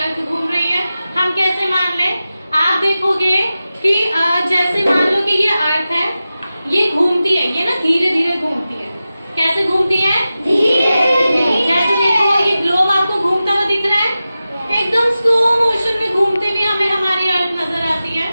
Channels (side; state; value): both; inverted; correlation -0.94